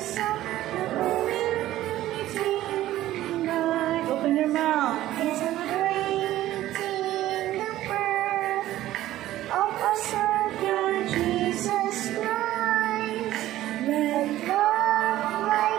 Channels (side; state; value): left; quieter; 14.5 dB